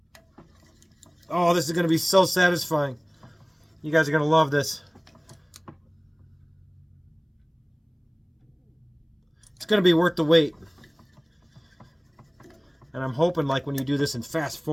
Oh, this is going to be so satisfying. You guys are going to love this. It's going to be worth the wait. And I'm hoping, like, when you do this in fast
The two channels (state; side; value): identical; both; correlation 1.00